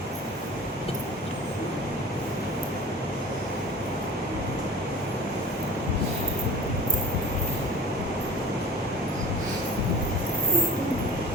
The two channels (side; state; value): both; normal; correlation 0.40